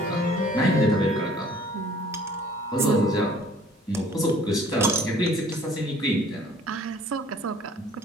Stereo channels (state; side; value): normal; both; correlation 0.54